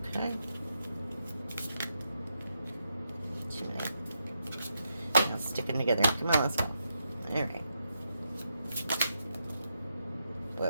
Okay. Too many. Now sticking together. Come on, let's go. All right.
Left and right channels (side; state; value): both; inverted; correlation -0.83